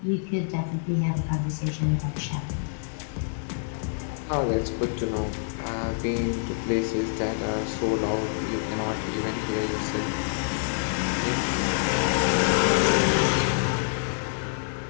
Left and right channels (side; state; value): right; silent; digital silence